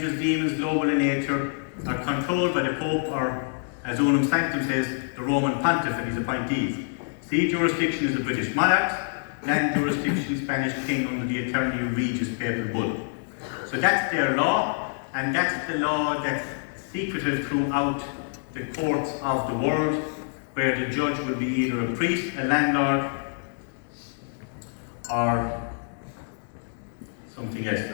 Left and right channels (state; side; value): silent; right; digital silence